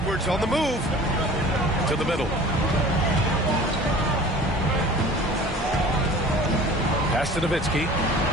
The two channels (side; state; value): both; normal; correlation 0.44